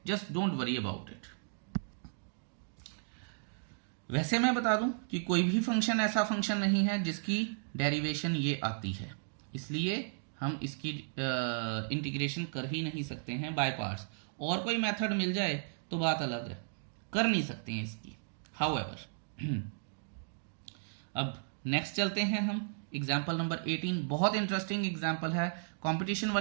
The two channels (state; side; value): silent; left; digital silence